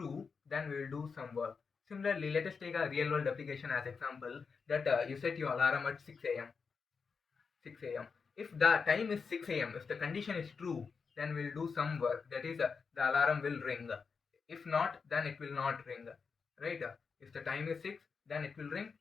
then we'll do some work. Similarly, let us take a real world application as example that you set your alarm at 6 a.m. 6 a.m. If the time is 6 a.m., if the condition is true, then we'll do some work. That is, the alarm will ring. If not, then it will not ring. Right? If the time is 6, then it will ring.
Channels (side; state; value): right; quieter; 5.3 dB